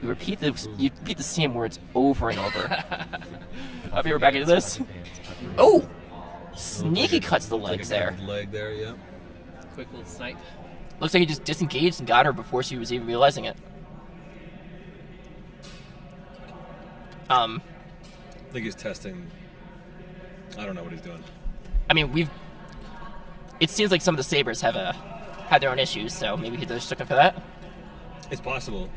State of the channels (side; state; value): both; identical; correlation 1.00